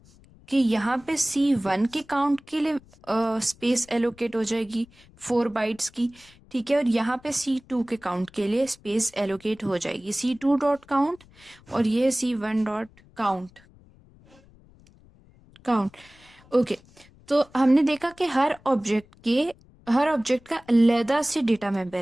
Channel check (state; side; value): noise; left; rumble, 27 dB below the sound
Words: कि यहाँ पे C1 के काउंट के लिए स्पेस एलोकेट हो जाएगी 4 बाइट्स की। ठीक है, और यहाँ पे C2 के काउंट के लिए स्पेस एलोकेट हो जाएगी C2 डॉट काउंट, और ये C1 dot count count. Okay, तो हमने देखा कि हर ऑब्जेक्ट का अलग से डेटा